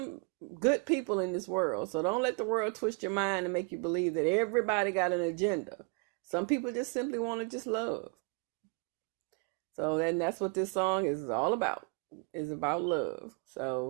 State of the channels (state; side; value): quieter; left; 33.4 dB